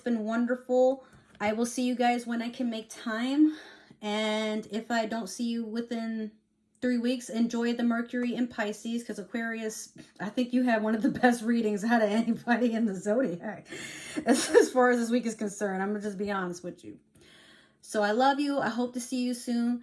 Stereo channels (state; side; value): identical; both; correlation 1.00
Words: wonderful. I will see you guys when I can make time. And if I don't see you within 3 weeks, enjoy the Mercury in Pisces, because Aquarius, I think you had one of the best readings out of anybody in the zodiac as far as this week is concerned. I'm going to just be honest with you. So I love you. I hope to see you soon.